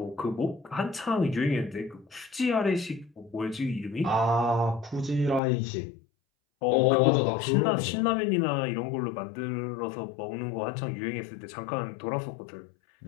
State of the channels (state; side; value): drops out; right; at 5.4 s